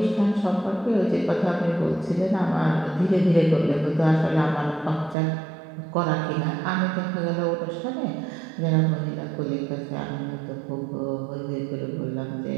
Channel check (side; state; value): left; drops out; at 5.2 s